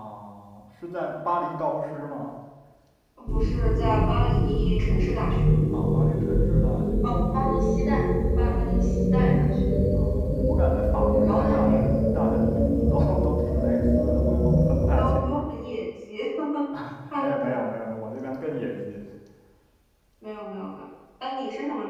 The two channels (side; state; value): both; identical; correlation 1.00